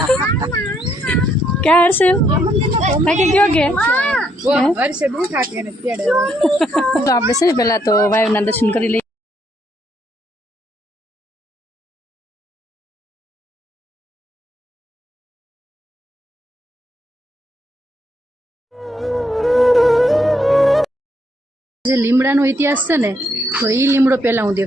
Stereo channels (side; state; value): both; normal; correlation 0.73